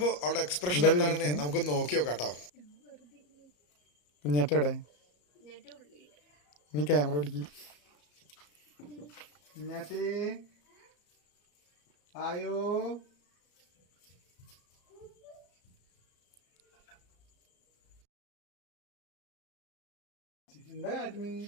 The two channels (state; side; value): late; right; 34 ms